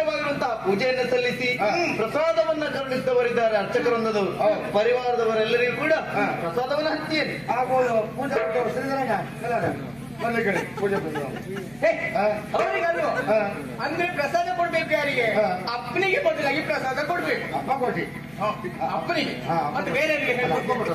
ಪೂಜೆಯನ್ನು ಸಲ್ಲಿಸಿ ಪ್ರಸಾದವನ್ನ ಕರುಣಿಸಿದವರಿದ್ದಾರೆ ಅರ್ಚಕರೊಂದದವರು ಪರಿವಾರದವರೆಲ್ಲರಿಗೂ ಕೂಡ ಪ್ರಸಾದವನ್ನು ಹಂಚಿಯೇನೆ ಪೂಜೆ ಅವರಿಗಲ್ವ ಅಂದ್ರೆ ಪ್ರಸಾದ ಕೊಡ್ಬೇಕು ಯಾರಿಗೆ ಅಪ್ಪನಿಗೆ ಬದಲಾಗಿ ಪ್ರಸಾದ ಕೊಡ್ಬೇಕು ಅಪ್ಪ ಕೊಟ್ಟಿ ಅಪ್ಪನಿಗೆ ಮತ್ತೆ ಬೇರೆ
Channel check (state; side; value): noise; right; hum, 25 dB below the sound